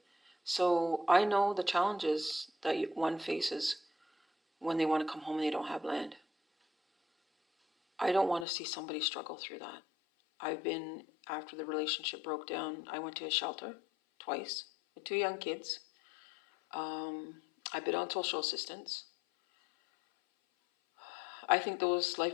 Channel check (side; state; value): right; drops out; at 8.5 s